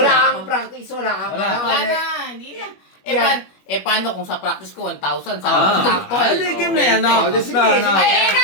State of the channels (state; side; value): late; right; 21 ms